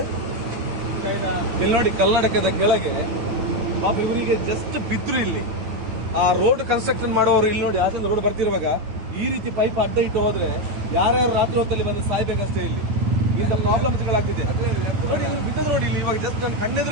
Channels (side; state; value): left; late; 9.2 ms